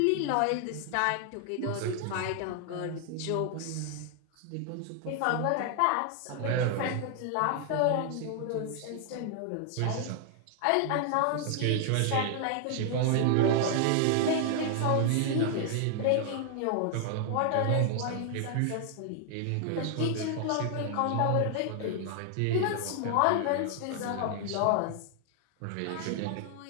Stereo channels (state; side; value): different; both; correlation 0.00